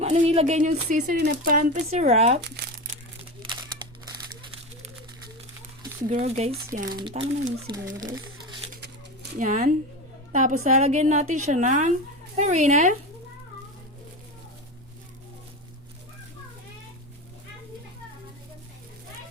anong ilagay yung seasoning na pampa syrup. Siguro guys, yan. Tama na yun siguro guys. Yan. Tapos lalagyan natin siya ng harina.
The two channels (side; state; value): both; normal; correlation 0.22